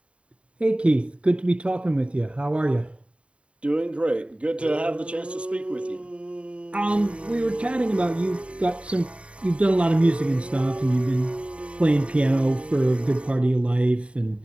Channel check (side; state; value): left; late; 0.061 ms